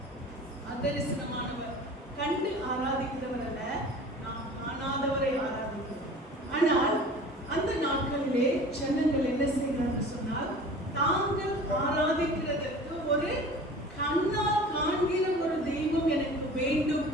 அதரிசனமானவர். கண்டு ஆராதிக்கிறவர் அல்ல, நாம் காணாதவரை ஆராதிக்கிறோம். ஆனால் அந்த நாட்களிலே ஜனங்கள் என்ன செய்கிறார்கள் சொன்னால் தாங்கள் ஆராதிக்கிறதற்கு ஒரு கண்ணால் காண்கிற ஒரு தெய்வம் எனக்கு வேண்டும்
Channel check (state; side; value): normal; both; correlation 0.41